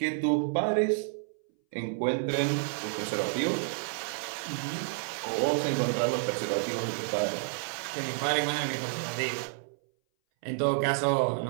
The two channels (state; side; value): silent; left; 58 dB below the other